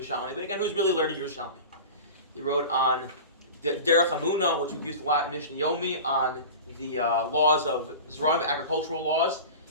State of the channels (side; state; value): both; inverted; correlation -0.33